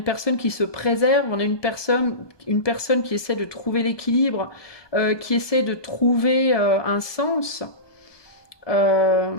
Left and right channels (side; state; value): right; late; 1.2 ms